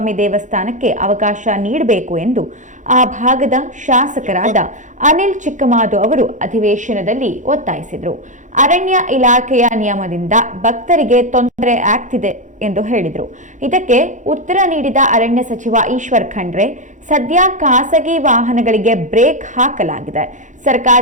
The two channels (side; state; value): left; late; 0.36 ms